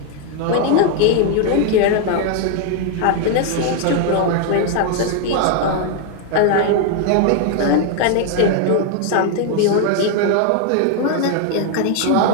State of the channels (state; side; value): different; both; correlation 0.00